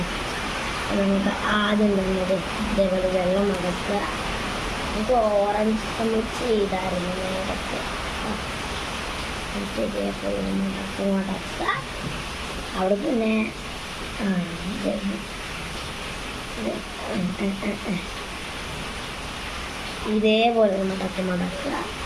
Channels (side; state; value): both; identical; correlation 1.00